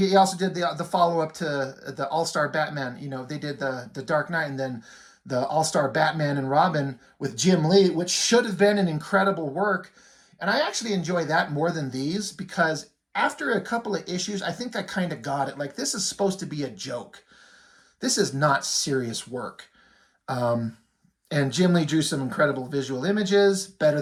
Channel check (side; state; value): both; identical; correlation 1.00